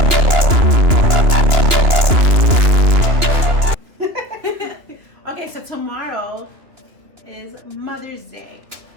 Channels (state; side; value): late; left; 2.9 ms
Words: Okay, so tomorrow is Mother's Day,